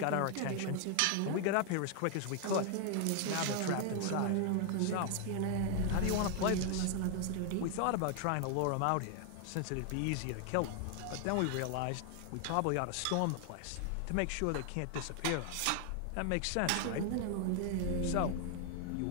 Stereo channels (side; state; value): both; different; correlation 0.00